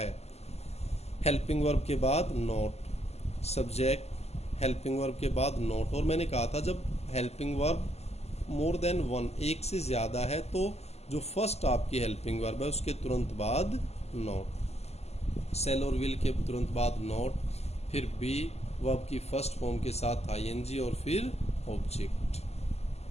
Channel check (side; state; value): right; late; 0.30 ms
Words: हेल्पिंग वर्ब के बाद नोट, सब्जेक्ट, हेल्पिंग वर्ब के बाद नोट। और मैंने कहा था जब helping verb more than one, एक से ज़्यादा है, तो जो फर्स्ट आपकी हेल्पिंग वर्ब है उसके तुरंत बाद नोट। सेल और विल के तुरंत बाद नोट, फिर बी वर्ब की फर्स्ट फॉर्म के साथ आईएनजी, और फिर ऑब्जेक्ट।